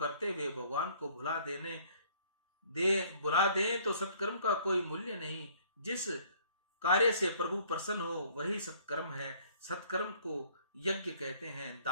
हुए भगवान को बुला दे तो सत्कर्म का कोई मूल्य नहीं। जिस कार्य से प्रभु प्रसन्न हो वही सत्कर्म है। सत्कर्म को यज्ञ कहते हैं।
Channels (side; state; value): both; inverted; correlation -0.59